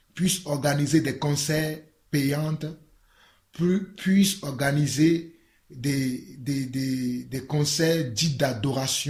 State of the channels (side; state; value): both; identical; correlation 1.00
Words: puissent organiser des concerts payants, puissent organiser des concerts dits